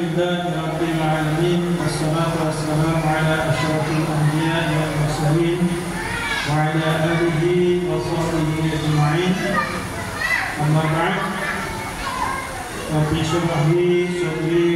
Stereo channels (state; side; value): identical; both; correlation 1.00